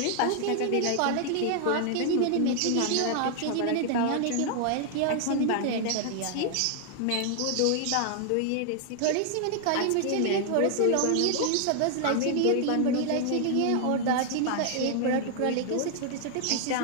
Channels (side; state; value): both; different; correlation 0.00